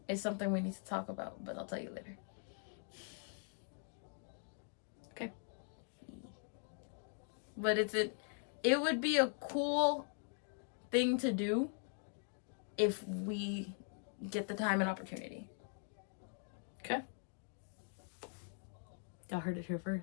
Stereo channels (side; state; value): right; silent; 50 dB below the other